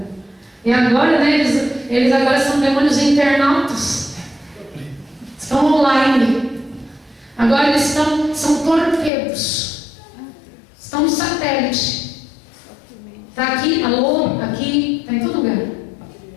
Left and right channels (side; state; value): right; drops out; at 9.1 s